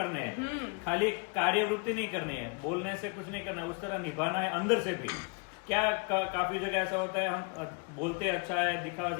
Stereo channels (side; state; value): right; quieter; 33.1 dB